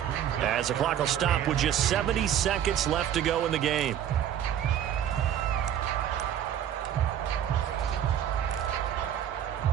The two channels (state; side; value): quieter; left; 10.2 dB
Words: as the clock will stop with just 70 seconds left to go in the game.